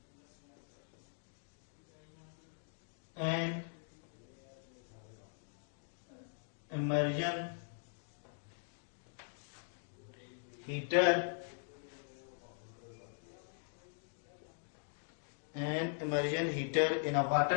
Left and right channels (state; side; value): silent; right; digital silence